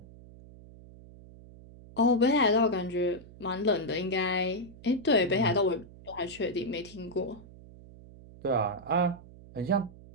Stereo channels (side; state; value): right; noise; hum, 20 dB below the sound